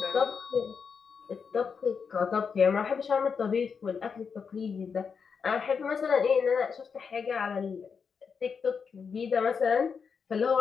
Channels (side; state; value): right; quieter; 6.0 dB